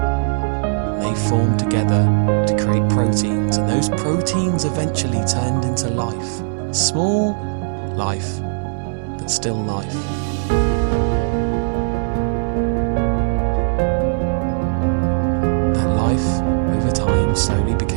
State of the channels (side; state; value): left; silent; 64 dB below the other